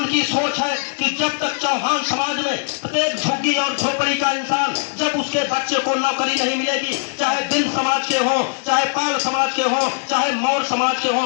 सोच है कि जब तक चौहान समाज में प्रत्येक झुग्गी और झोपड़ी का इंसान, जब उसके बच्चे को नौकरी नहीं मिलेगी, चाहे बिंद समाज के हो, चाहे पाल समाज के हो, चाहे मौर्य समाज के हो,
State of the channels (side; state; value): right; silent; digital silence